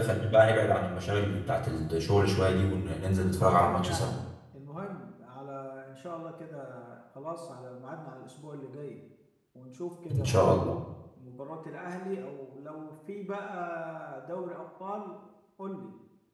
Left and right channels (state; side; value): identical; both; correlation 1.00